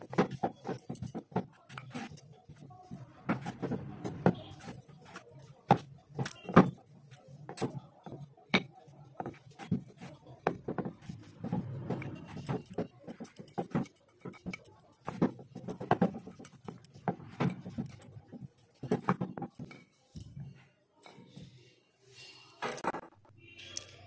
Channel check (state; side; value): identical; both; correlation 1.00